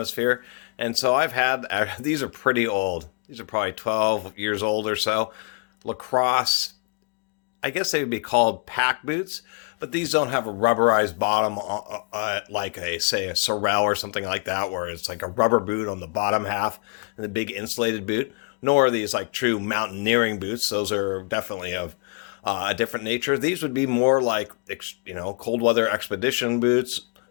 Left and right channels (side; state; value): right; quieter; 33.8 dB